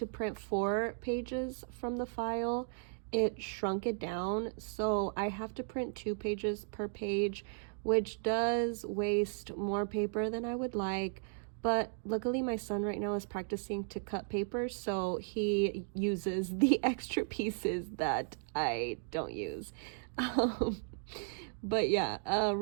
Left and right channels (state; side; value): silent; left; digital silence